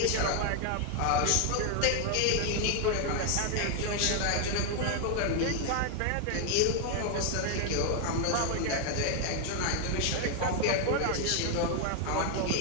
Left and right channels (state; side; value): different; both; correlation 0.00